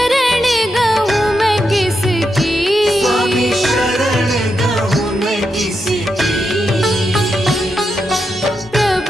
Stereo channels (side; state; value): both; normal; correlation 0.85